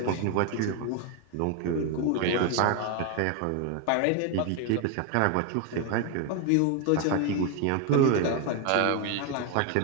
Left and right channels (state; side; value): different; both; correlation 0.01